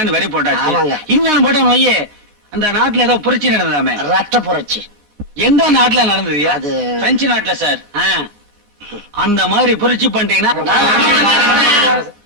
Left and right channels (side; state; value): left; late; 14 ms